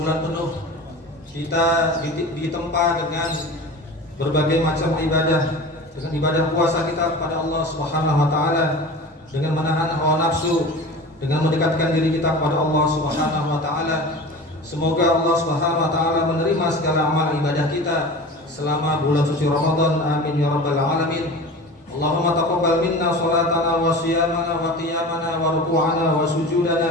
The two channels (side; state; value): both; normal; correlation 0.35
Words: penuh kita ditempa dengan berbagai macam ibadah, dengan ibadah puasa kita kepada Allah Subhanahu wa taala, dengan menahan hawa nafsu, dengan mendekatkan diri kita kepada Allah Subhanahu wa taala. Semoga Allah Subhanahu wa taala menerima segala amal ibadah kita selama bulan suci Ramadan. Amin ya rabbal alamin. Allahumma taqabbal minna salatana wa siyamana wa qiyamana wa ruku'ana wa